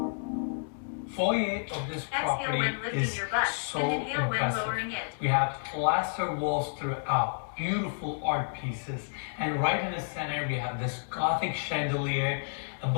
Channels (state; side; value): silent; right; digital silence